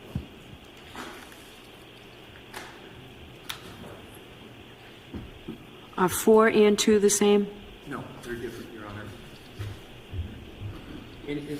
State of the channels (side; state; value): both; identical; correlation 1.00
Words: Are 4 and 2 the same? no, they're different, Your Honor. And